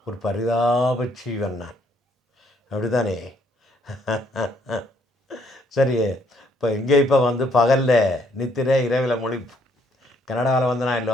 ஒரு பரிதாப ஜீவன் நான், அப்படி தானே? சரி, இப்போ வந்து பகலில் நித்திரை, இரவில் மொழிப்பு. கனடாவில் வந்து நான்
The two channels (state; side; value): normal; both; correlation 0.68